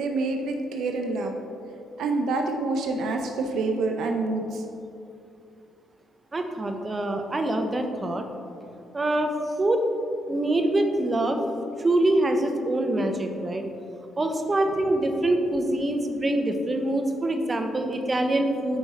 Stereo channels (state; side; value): normal; both; correlation 0.82